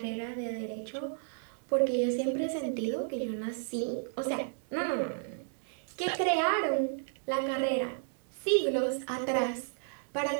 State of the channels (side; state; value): left; silent; digital silence